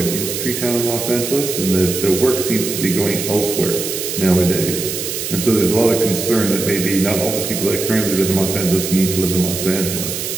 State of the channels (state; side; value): noise; right; hiss, 4 dB below the sound